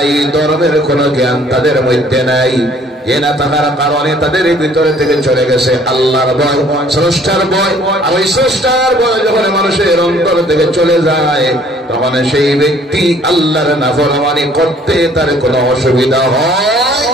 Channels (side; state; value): both; normal; correlation 0.58